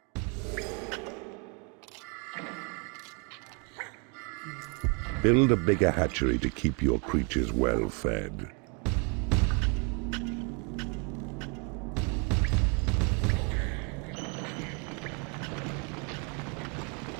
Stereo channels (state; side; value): quieter; left; 35.0 dB